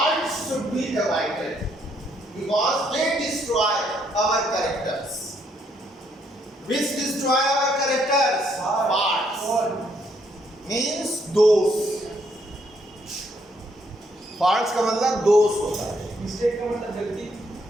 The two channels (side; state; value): both; normal; correlation 0.71